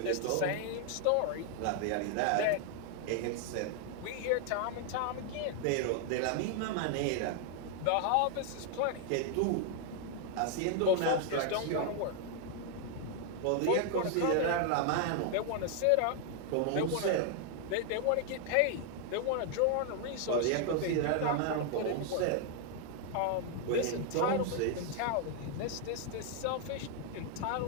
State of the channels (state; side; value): different; both; correlation 0.00